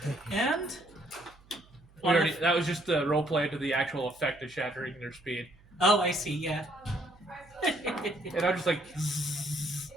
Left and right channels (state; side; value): noise; right; hum, 27 dB below the sound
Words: And That was just the role play to the actual effect of shattering their speed. oh, I see. Yeah. And I'm just like.